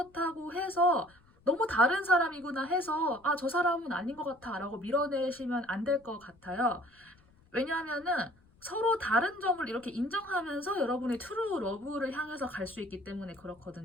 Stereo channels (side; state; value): left; noise; rumble, 30 dB below the sound